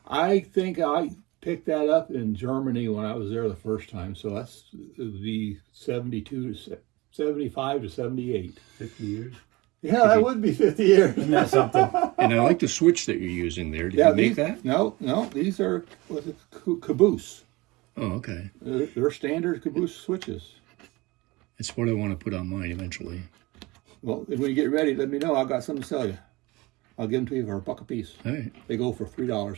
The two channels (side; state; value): left; quieter; 22.3 dB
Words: I think I picked that up in Germany when I was there the first time. So that's the 72 to 75 to 78. 50 years. Yeah, that would be 50 years. Isn't that something? And I like the switch that you're using there. Did you make these, that? No, these are caboose. Oh, okay. They're standard caboose switches. It's what I want to put on mine eventually. Well, when you get ready, let me know. I've got something to sell you. I'll give them to you for $1 a piece. All right, They go for